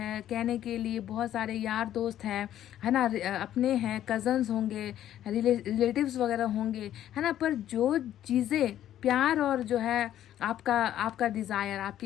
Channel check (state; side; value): quieter; right; 11.7 dB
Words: कहने के लिए बहुत सारे यार दोस्त हैं, है ना, अपने हैं, कजन्स होंगे, रिलेटिव्स वगैरह होंगे, है ना। पर जो चीज़ें प्यार और जो है आपका डिज़ायर,